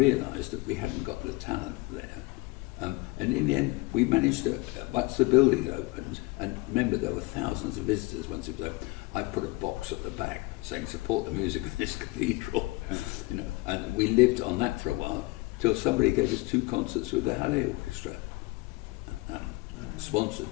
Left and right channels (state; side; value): quieter; right; 23.7 dB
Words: that we hadn't got the talent there. And in the end, we managed to, once the building opened, and remember there were thousands of visitors once it was open, I put a box at the back saying support the music of this cathedral, you know, and we lived on that for a while till somebody gave us 2 concerts with the Halley Orchestra,